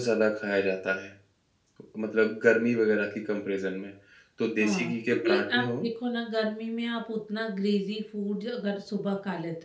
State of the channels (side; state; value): both; identical; correlation 1.00